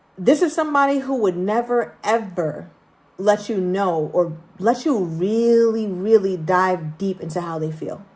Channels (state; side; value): identical; both; correlation 1.00